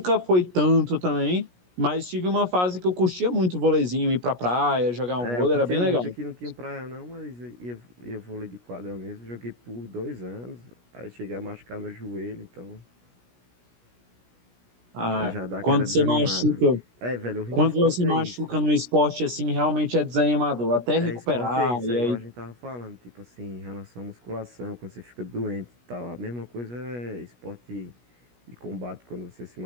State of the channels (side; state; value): left; late; 17 ms